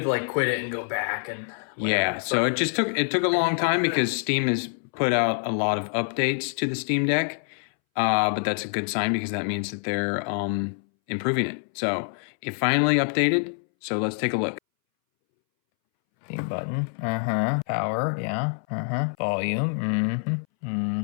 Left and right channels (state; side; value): silent; right; 61 dB below the other